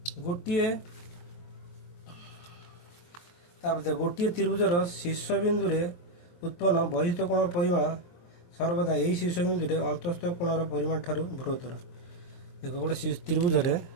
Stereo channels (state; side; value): late; right; 23 ms